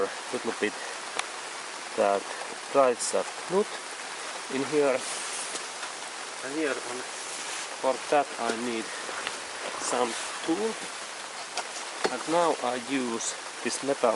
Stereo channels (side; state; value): both; identical; correlation 1.00